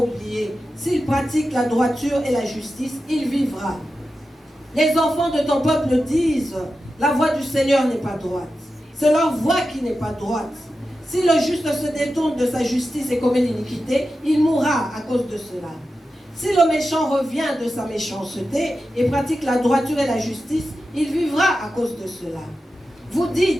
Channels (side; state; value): both; normal; correlation 0.91